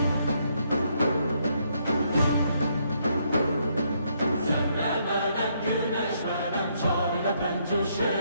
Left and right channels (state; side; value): inverted; both; correlation -0.74